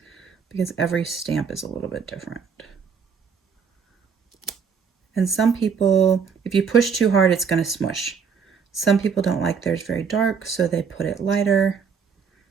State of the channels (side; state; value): left; quieter; 6.3 dB